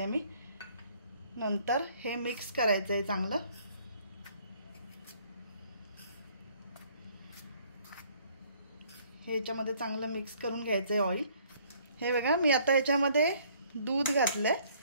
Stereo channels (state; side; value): inverted; both; correlation -0.61